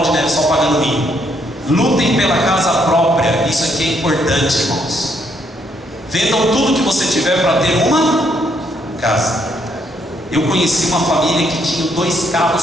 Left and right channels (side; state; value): both; normal; correlation 0.72